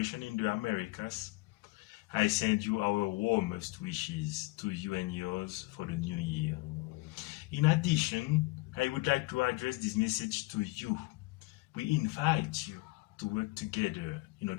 in the Americas, I send you our warmest wishes to you and yours for the new year. In addition, I would like to address this message to you. We invite you to work together in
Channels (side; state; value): right; quieter; 22.9 dB